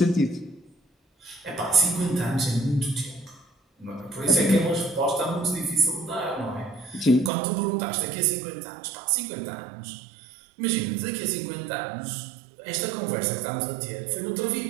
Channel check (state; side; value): drops out; left; at 7.3 s